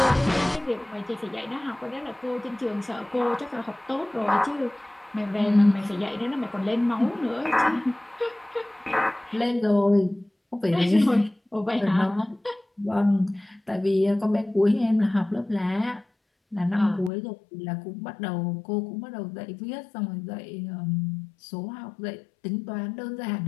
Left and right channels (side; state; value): right; drops out; at 17.1 s